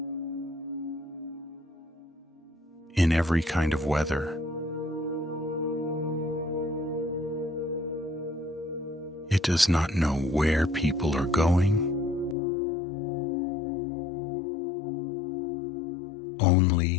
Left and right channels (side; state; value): right; drops out; at 12.4 s